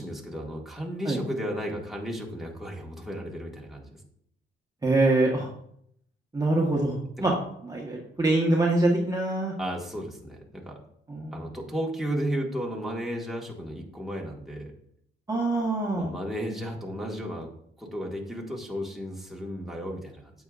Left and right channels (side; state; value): both; normal; correlation 0.77